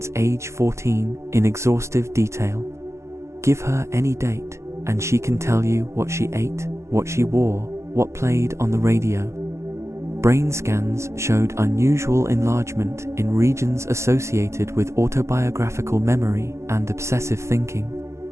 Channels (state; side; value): late; left; 0.14 ms